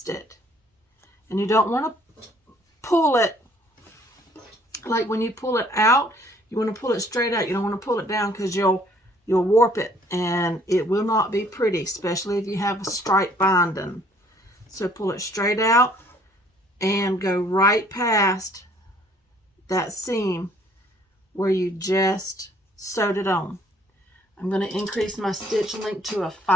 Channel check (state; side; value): normal; both; correlation 0.60